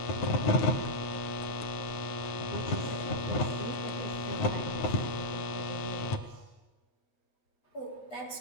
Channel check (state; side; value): late; right; 9.2 ms